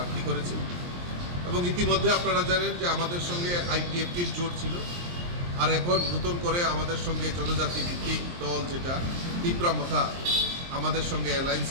করেছি। এবং ইতিমধ্যে আপনারা জানেন যে আমাদের সঙ্গে আইপিএফটির জোট ছিল, আর এখন নতুন করে আমাদের সঙ্গে জনজাতি ভিত্তিক দল যেটা তীব্রামথা আমাদের সঙ্গে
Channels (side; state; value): left; late; 23 ms